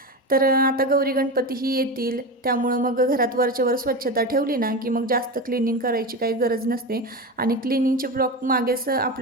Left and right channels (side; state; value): both; normal; correlation 0.22